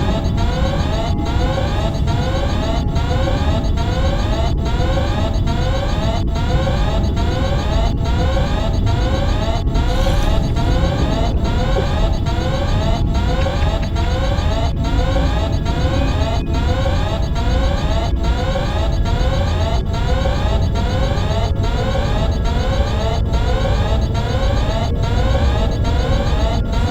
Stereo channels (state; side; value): identical; both; correlation 1.00